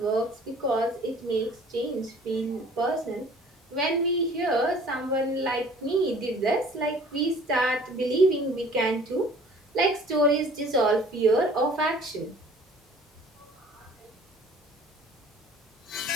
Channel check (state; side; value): normal; both; correlation 0.51